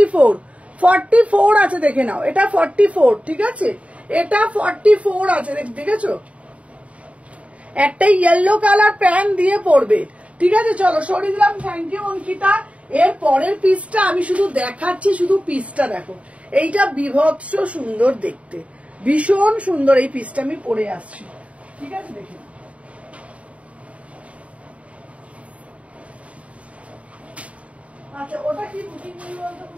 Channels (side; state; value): left; late; 0.065 ms